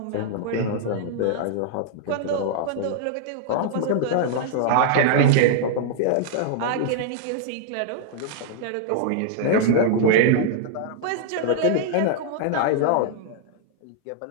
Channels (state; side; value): different; both; correlation -0.01